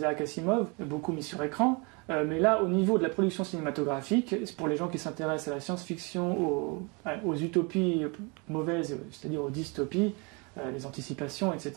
Asimov, beaucoup mis sur écran, mais là, au niveau de la production cinématographique, pour les gens qui s'intéressent à la science-fiction, aux utopies mauvaises, c'est-à-dire aux dystopies, les anticipations,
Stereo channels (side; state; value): left; quieter; 30.7 dB